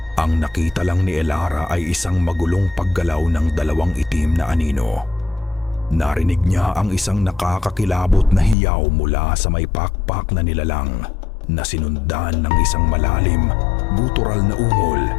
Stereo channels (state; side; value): drops out; right; at 8.6 s